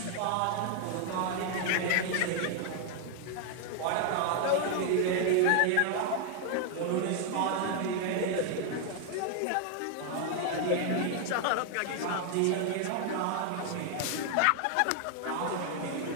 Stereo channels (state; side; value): different; both; correlation 0.00